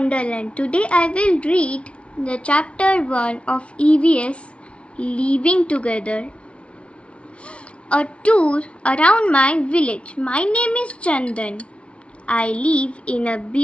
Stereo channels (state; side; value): late; right; 0.060 ms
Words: Today I will read the chapter 1 of EVS Living Together. A tour around my village. My name is Chandan. I live in a